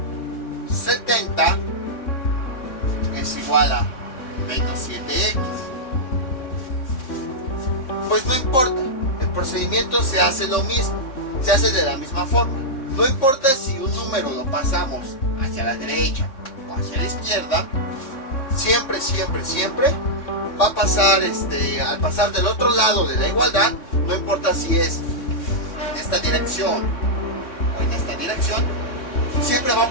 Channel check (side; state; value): right; late; 3.6 ms